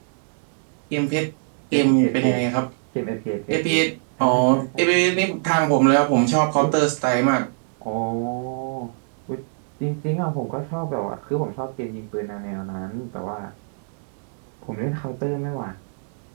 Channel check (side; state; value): left; silent; digital silence